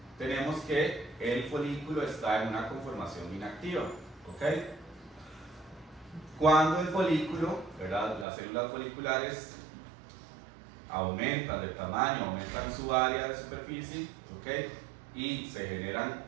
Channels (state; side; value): drops out; left; at 8.2 s